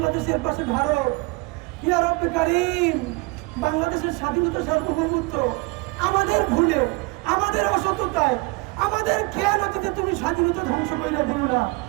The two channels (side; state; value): left; quieter; 25.7 dB